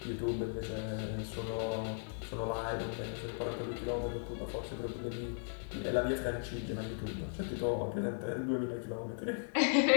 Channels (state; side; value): silent; right; 53 dB below the other